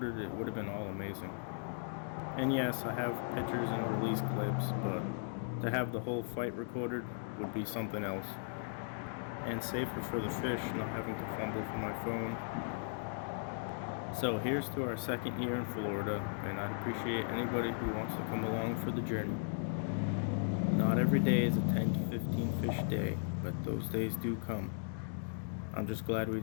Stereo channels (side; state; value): right; silent; digital silence